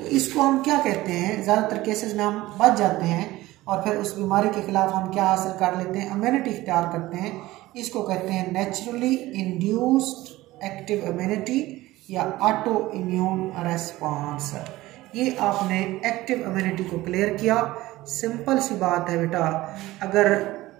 इसको हम क्या कहते हैं, ज़्यादातर केसेस में हम बच जाते हैं और फिर उस बीमारी के खिलाफ हम क्या हासिल कर लेते हैं, इम्यूनिटी इख्तियार करते हैं। इसको कहते हैं नेचुरली इंड्यूस्ड एक्टिव इम्यूनिटी या ऑटो इम्यून रिस्पॉन्स। ये आपने एक्टिव इम्यूनिटी को क्लियर किया। सिंपल सी बात है बेटा, अगर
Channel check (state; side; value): quieter; left; 17.7 dB